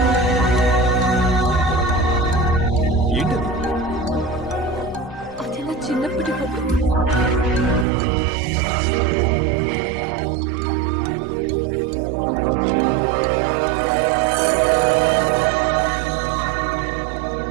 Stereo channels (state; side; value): drops out; left; at 7.9 s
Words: ఏంటది? అది నా చిన్నప్పటి ఫోటో.